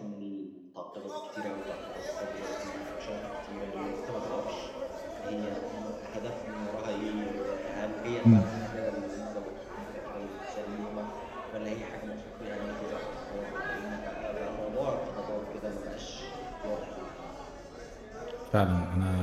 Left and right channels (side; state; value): both; identical; correlation 1.00